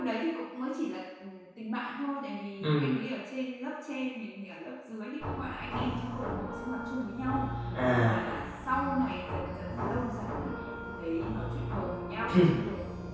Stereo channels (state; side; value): identical; both; correlation 1.00